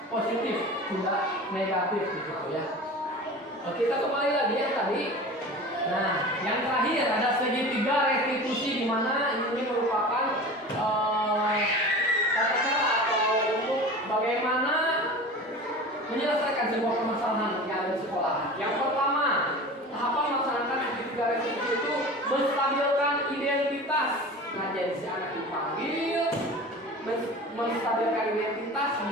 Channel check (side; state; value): both; normal; correlation 0.35